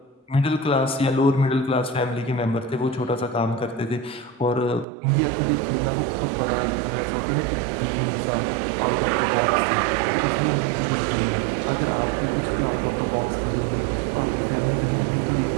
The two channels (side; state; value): left; drops out; at 4.9 s